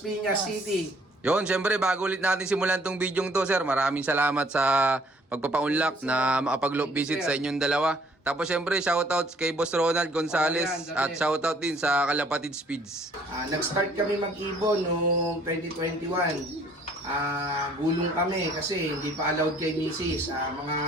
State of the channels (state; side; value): normal; both; correlation 0.60